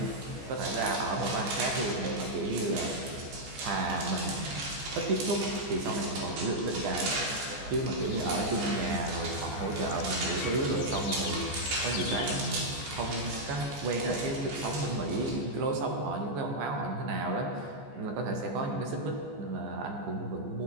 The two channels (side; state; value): left; late; 14 ms